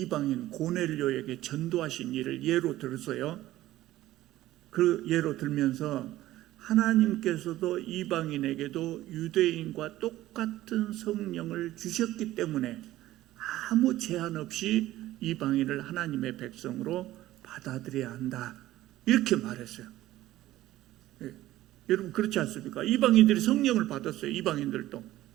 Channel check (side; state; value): left; quieter; 15.3 dB